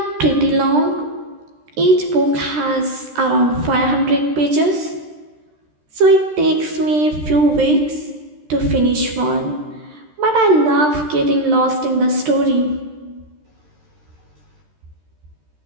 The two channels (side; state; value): left; late; 13 ms